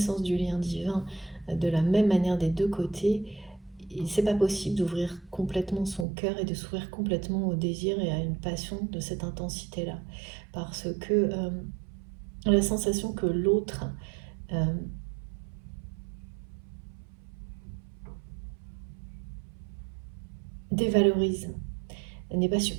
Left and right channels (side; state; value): left; drops out; at 6.1 s